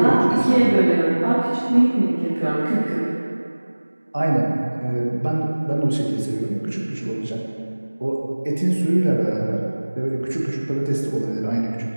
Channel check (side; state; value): both; inverted; correlation -1.00